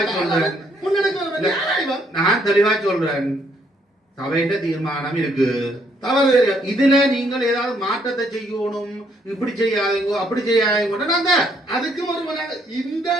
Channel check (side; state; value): both; normal; correlation 0.70